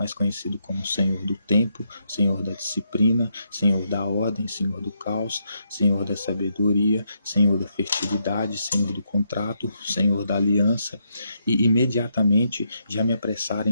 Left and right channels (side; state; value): both; inverted; correlation -0.79